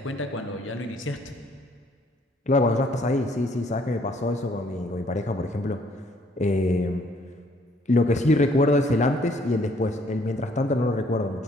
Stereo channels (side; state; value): both; normal; correlation 0.64